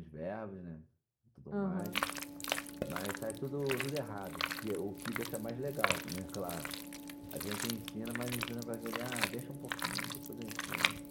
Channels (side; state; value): both; identical; correlation 1.00